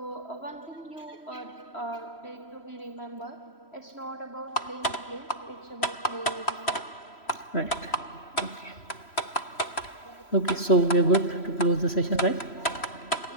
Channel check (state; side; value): late; right; 3.1 ms